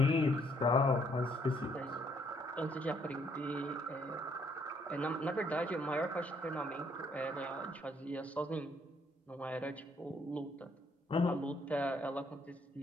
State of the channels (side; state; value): both; normal; correlation 0.68